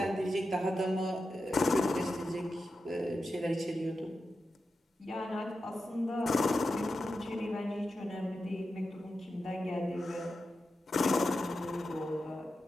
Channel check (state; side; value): normal; both; correlation 0.90